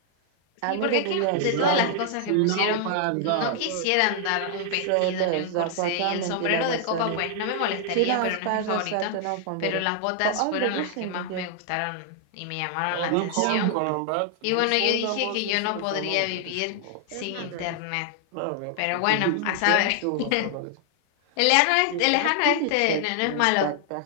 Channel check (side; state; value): both; different; correlation 0.00